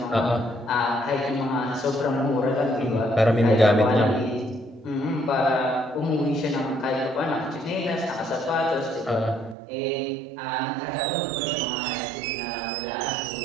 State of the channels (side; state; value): left; drops out; at 9.6 s